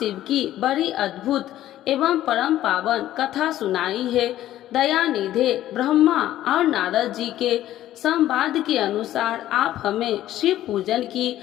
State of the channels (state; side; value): quieter; right; 13.4 dB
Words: की बड़ी अद्भुत एवं परम पावन कथा सुनाई है। दयानिधे ब्रह्मा और नारद जी के संवाद के अनुसार आप हमें शिव पूजन की